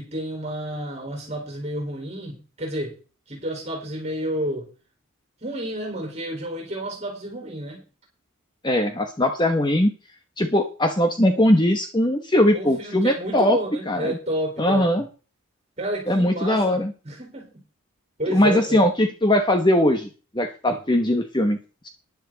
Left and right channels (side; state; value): both; normal; correlation 0.58